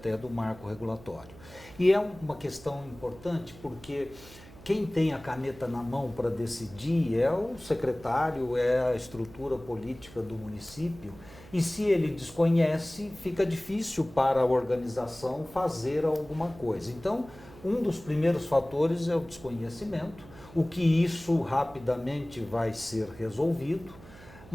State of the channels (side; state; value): right; noise; hum, 20 dB below the sound